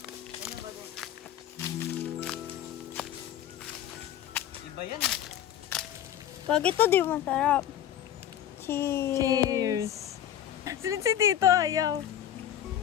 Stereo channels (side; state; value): right; quieter; 10.8 dB